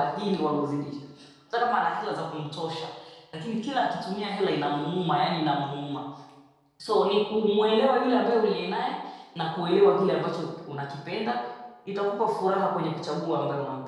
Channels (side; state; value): both; identical; correlation 1.00